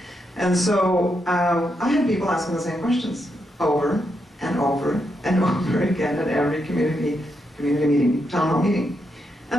And so I had people asking the same questions over and over and over again at every community meeting, town hall meeting.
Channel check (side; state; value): both; normal; correlation 0.82